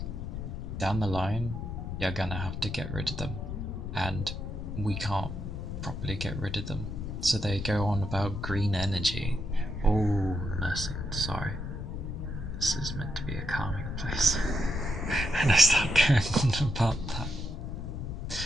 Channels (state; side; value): noise; left; rumble, 5 dB below the sound